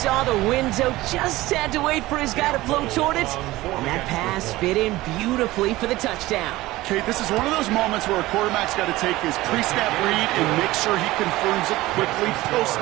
the window, just had to wait for his guy to float toward it, and that pass fit in beautifully for the touchdown. Kate, this is one of those moments where a quarterback's got to take his pre-snap read and make sure he confirms it quickly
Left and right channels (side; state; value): left; quieter; 18.1 dB